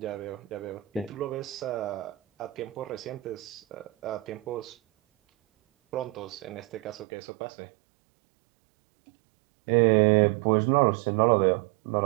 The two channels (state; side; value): drops out; left; at 7.1 s